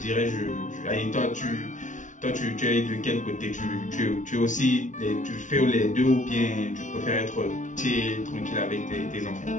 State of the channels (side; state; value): right; late; 0.37 ms